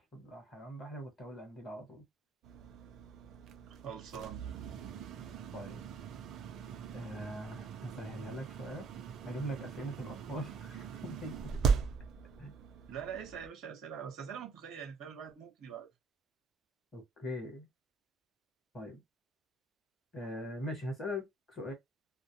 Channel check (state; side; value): quieter; left; 3.9 dB